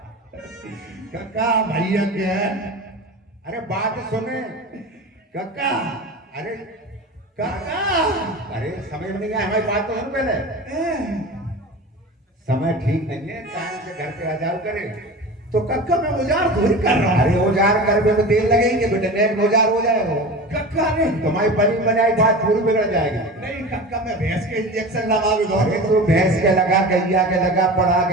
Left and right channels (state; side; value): normal; both; correlation 0.32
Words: कक्का भैया क्या है? अरे बात सुने कक्का अरे कक्का अरे समझ में नहीं आया, हमारी बात तो सुन पहले। समय ठीक नहीं है, टाइम से घर पे आ जाओ करे। तो कक्का मैं औजार थोड़ी कर रहा हूँ। अरे औजार करने में तेल लगेंगे बेटे, नेक औजार हो जाए वो। कक्का नहीं तुम्हारी बनी बनाई बात पूरी बिगड़ जाएगी। नहीं कक्का मैं भैंस के इंजेक्शन लगा भी अरे तो भैंस के लगा, गैया के लगा, पढ़ा